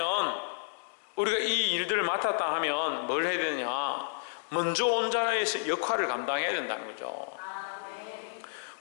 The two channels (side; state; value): right; silent; digital silence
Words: 우리가 이 일들을 맡았다 하면 뭘 해야 되느냐? 먼저 온 자의 역할을 감당해야 된다는 거죠.